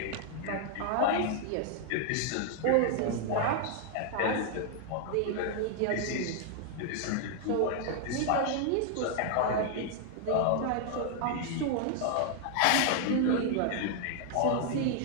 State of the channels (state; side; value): different; both; correlation 0.00